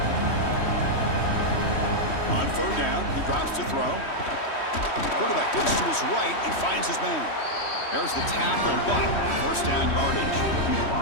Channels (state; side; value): late; right; 3.1 ms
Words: On third down, he drops to throw. Quarterback looks to his right and finds his man. There's the tackle, but first down yardage.